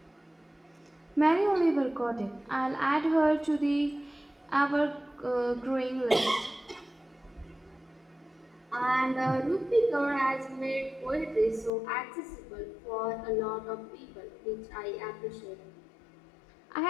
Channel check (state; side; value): drops out; right; at 11.7 s